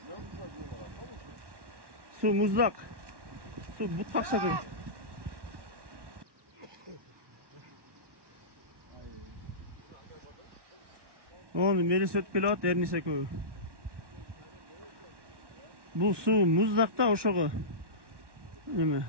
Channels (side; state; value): left; late; 1.1 ms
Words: Su muzlak. Su bu takşakı. Onu beri söt pilot ernise koy. Bu su muzlakta oşoğu. Neme?